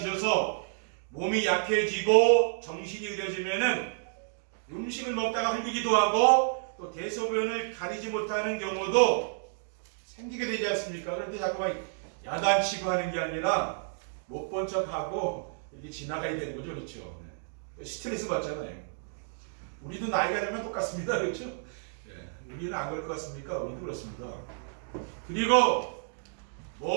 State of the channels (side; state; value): left; silent; digital silence